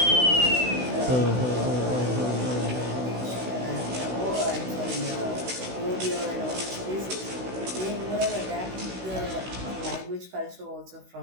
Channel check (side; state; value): left; late; 16 ms